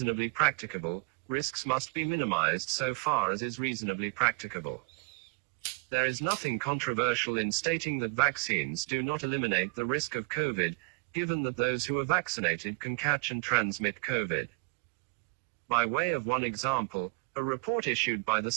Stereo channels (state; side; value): quieter; left; 32.8 dB